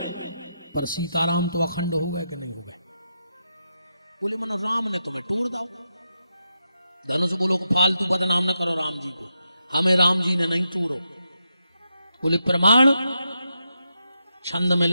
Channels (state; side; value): inverted; both; correlation -0.84